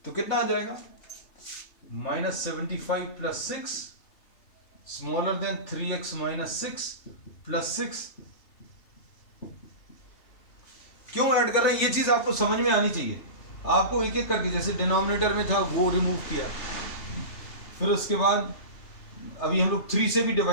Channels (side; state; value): right; late; 3.3 ms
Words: तो कितना आ जाएगा -75 plus 6 smaller then 3x minus 6 plus 6। क्यों ऐड कर रहे हैं, ये चीज आपको समझ में आनी चाहिए। आपको एक एक करके, जैसे डिनोमिनेटर में था वो रिमूव किया, फिर उसके बाद अभी हम लोग 3 से भी